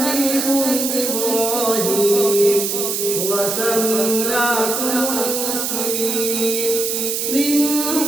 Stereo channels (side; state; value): right; noise; hiss, 1 dB below the sound